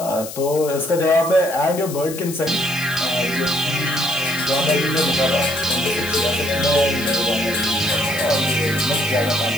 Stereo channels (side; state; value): left; noise; hiss, 11 dB below the sound